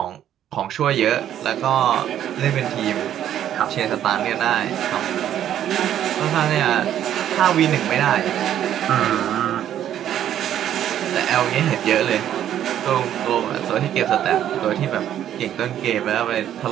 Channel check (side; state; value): left; quieter; 10.8 dB